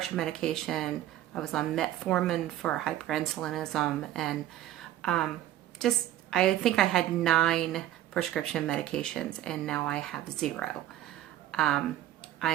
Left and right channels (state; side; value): quieter; left; 13.0 dB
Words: medication. I was on metformin for hyperinsulinism, and I think I had 9 prescription medications, and now I have 0.